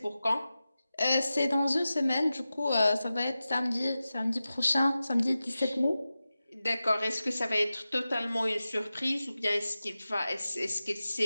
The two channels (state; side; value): inverted; both; correlation -0.94